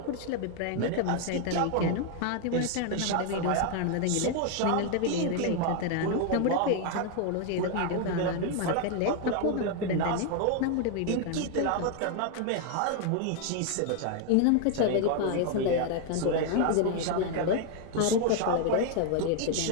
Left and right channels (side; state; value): both; different; correlation 0.00